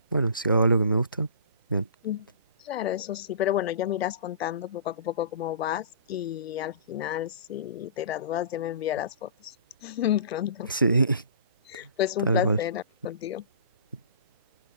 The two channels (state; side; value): inverted; both; correlation -0.42